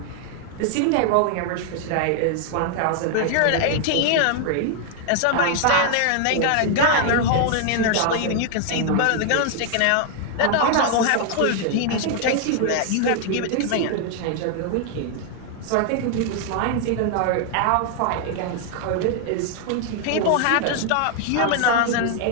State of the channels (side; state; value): both; different; correlation 0.00